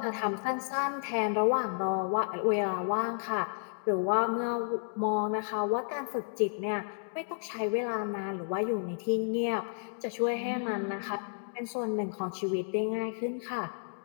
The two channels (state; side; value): silent; right; digital silence